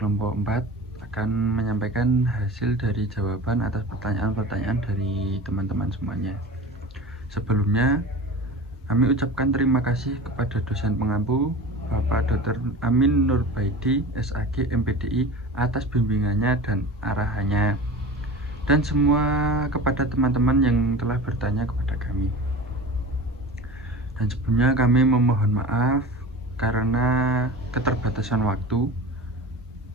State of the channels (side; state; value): both; normal; correlation 0.34